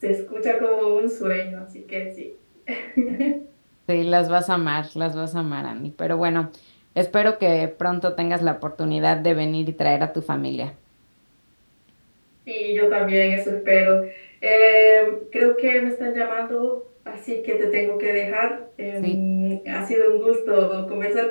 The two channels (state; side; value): inverted; both; correlation -1.00